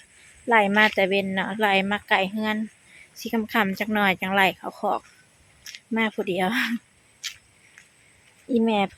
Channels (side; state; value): both; identical; correlation 1.00